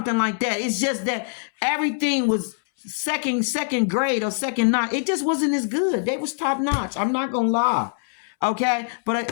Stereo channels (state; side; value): silent; right; 63 dB below the other